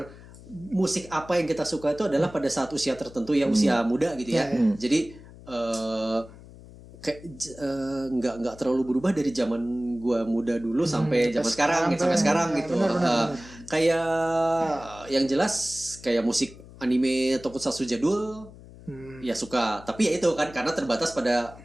musik apa yang kita suka itu adalah pada saat usia tertentu ya, usia muda gitu ya. Jadi nggak terlalu berubah dari zaman gua muda dulu sampai zaman sekarang gitu. Kayak yang jelas kayak musik anime tokusatsu jadul ya suka, tapi ya itu kan karena terbatas pada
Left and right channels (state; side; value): noise; left; hum, 19 dB below the sound